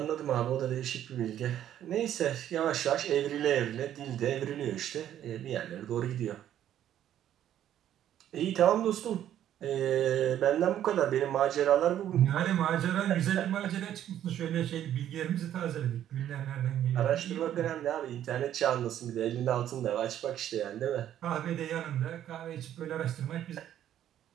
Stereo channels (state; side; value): quieter; left; 11.1 dB